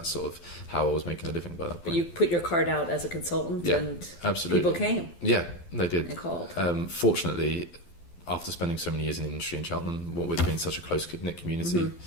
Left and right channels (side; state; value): right; late; 12 ms